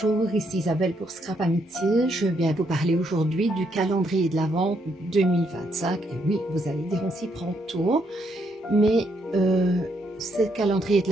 ici Isabelle pour Scrap Amitié. Je viens vous parler aujourd'hui du calendrier de l'Avent 2025. Et oui, vous allez dire on s'y prend tôt, mais ce calendrier de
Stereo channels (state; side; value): normal; both; correlation 0.75